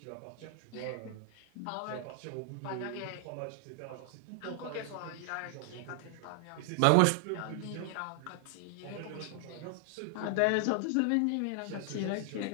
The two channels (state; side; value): different; both; correlation 0.00